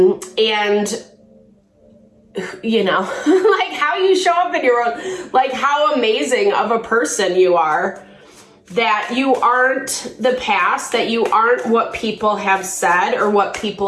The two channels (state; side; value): identical; both; correlation 1.00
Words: you know, like how you show up in your own, like how amazing of a person you are, that you aren't the past, that you aren't what people have said or what